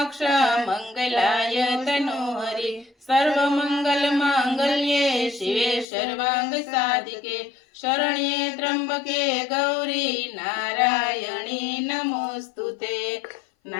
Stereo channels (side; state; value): right; drops out; at 5.9 s